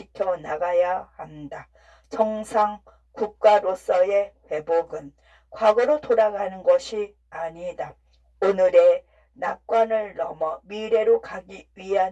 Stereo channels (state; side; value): identical; both; correlation 1.00